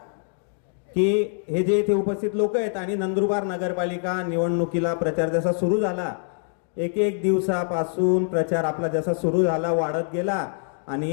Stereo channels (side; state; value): right; silent; digital silence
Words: की हे जे इथे उपस्थित लोक आहेत आणि नंदुरबार नगरपालिका निवडणुकीला प्रचार जसा सुरू झाला, एक दिवसापासून प्रचार आपला जसा सुरू झाला, वाढत गेला